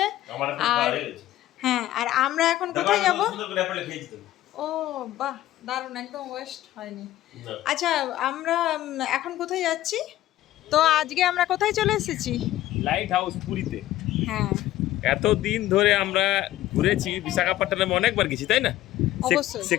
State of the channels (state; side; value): quieter; right; 14.4 dB